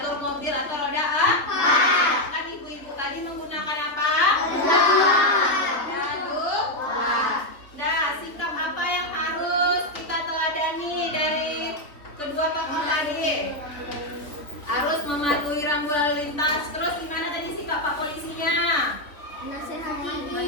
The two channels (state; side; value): late; right; 3.3 ms